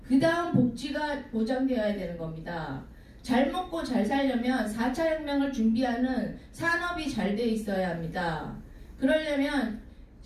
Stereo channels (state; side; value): identical; both; correlation 1.00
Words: 그 다음 복지가 보장되어야 되는 겁니다. 잘 먹고 잘 살려면 4차 혁명을 준비하는 산업이 잘 돼 있어야 합니다. 그러려면